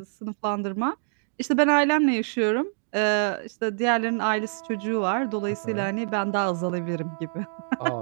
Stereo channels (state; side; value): silent; left; digital silence